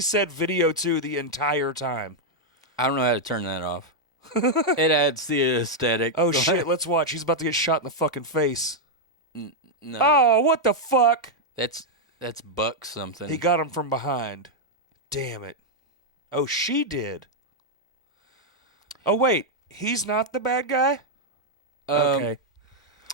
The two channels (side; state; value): both; normal; correlation -0.02